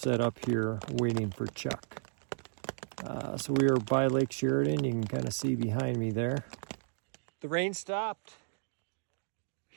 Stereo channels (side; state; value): left; silent; digital silence